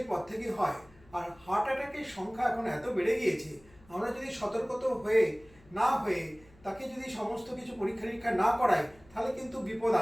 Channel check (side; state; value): left; noise; hum, 27 dB below the sound